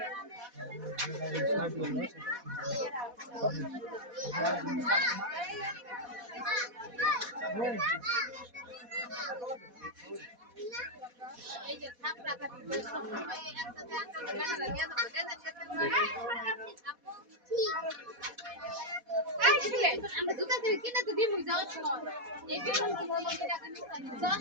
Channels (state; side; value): late; left; 4.1 ms